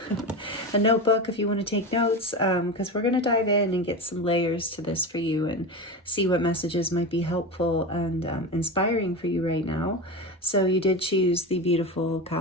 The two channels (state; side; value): normal; both; correlation 0.22